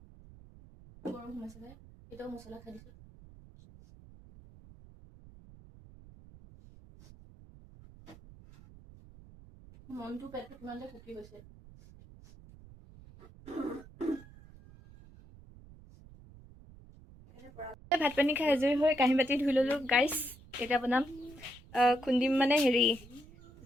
গৰম সোমাইছে যে এতিয়াও মছলা খাই দিছোঁ মনটো পেটটো কিমান যে ফুকি গৈছে ভাত পানী খাই আজৰি হৈ কাঁহী বাতি ধুই ল'লোঁ গাইছ এতিয়া বনাম খুন্দিম মানে হেৰি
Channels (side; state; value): right; noise; rumble, 21 dB below the sound